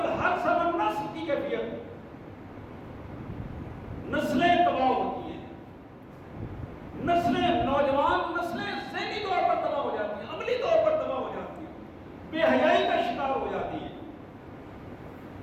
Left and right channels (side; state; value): both; identical; correlation 1.00